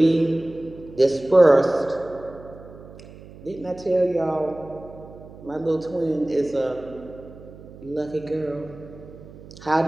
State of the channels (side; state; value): right; noise; hum, 18 dB below the sound